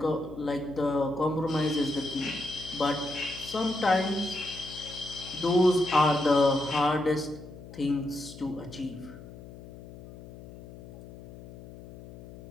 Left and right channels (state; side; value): noise; left; hum, 16 dB below the sound